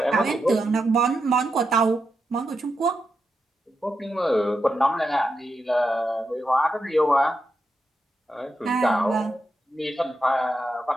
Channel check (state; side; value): normal; both; correlation 0.86